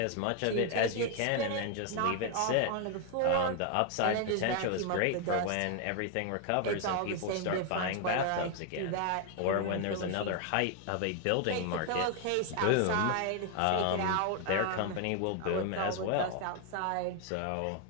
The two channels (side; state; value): both; different; correlation 0.00